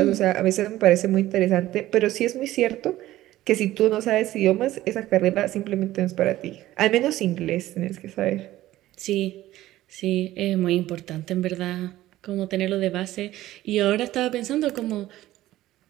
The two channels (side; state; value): left; quieter; 15.2 dB